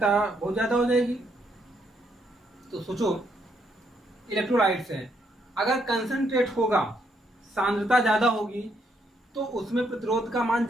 बहुत ज्यादा हो जाएगी। तो सोचो, इलेक्ट्रोलाइट्स है, अगर कंसंट्रेट होगा, सांद्रता ज्यादा होगी, तो उसमें प्रतिरोध का मान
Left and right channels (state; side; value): normal; both; correlation 0.74